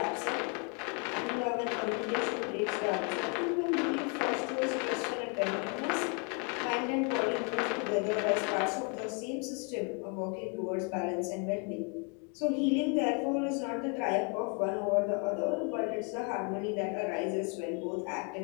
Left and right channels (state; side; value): quieter; right; 36.4 dB